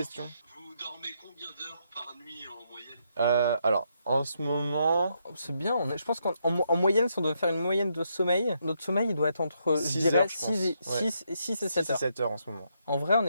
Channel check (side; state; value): both; inverted; correlation -0.77